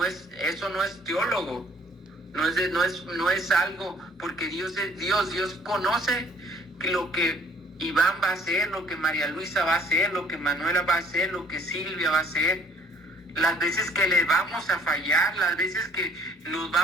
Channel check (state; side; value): normal; both; correlation 0.57